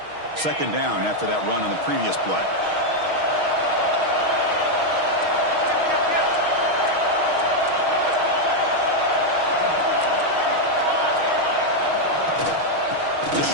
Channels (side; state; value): left; late; 6.4 ms